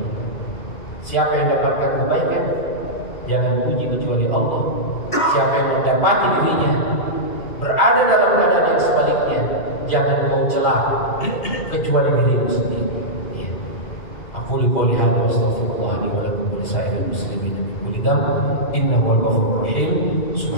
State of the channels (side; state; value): right; late; 2.8 ms